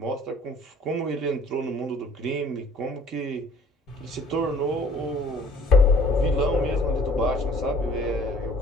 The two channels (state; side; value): normal; both; correlation 0.54